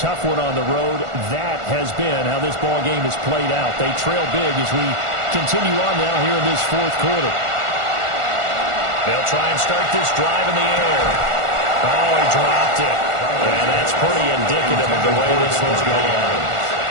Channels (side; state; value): left; late; 1.4 ms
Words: one on the road. That has been how this ball game has played out. They trail big as we continue on now here in this 4th quarter. They'll try and start this drive in the air. Oh, he dropped it. And that's pretty indicative of the way this one's going.